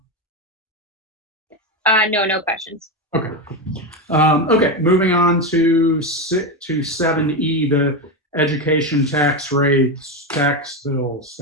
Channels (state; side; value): normal; both; correlation 0.13